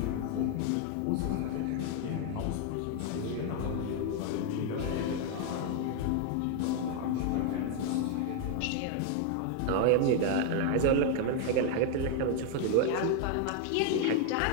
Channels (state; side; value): different; both; correlation 0.00